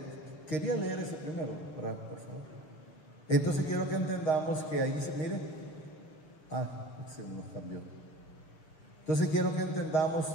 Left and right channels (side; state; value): right; late; 6.6 ms